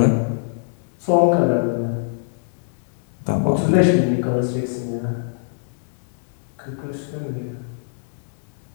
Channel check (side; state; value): right; silent; digital silence